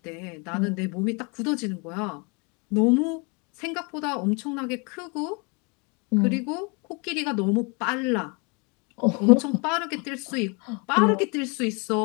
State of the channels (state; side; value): quieter; right; 31.8 dB